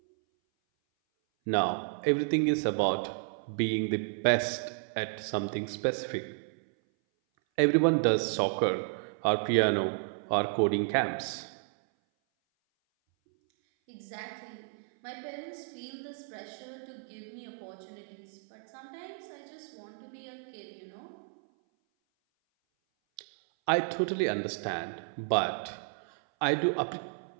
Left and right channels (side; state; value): left; silent; 56 dB below the other